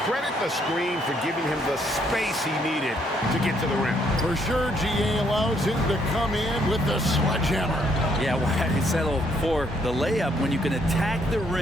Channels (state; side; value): normal; both; correlation 0.70